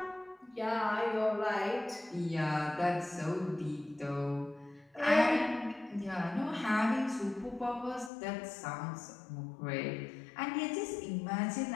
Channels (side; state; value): right; drops out; at 8.1 s